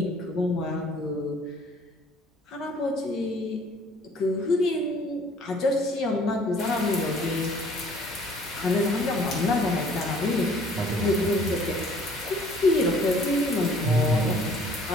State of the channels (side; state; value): both; normal; correlation 0.56